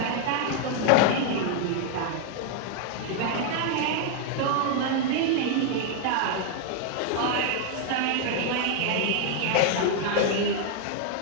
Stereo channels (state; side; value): different; both; correlation 0.00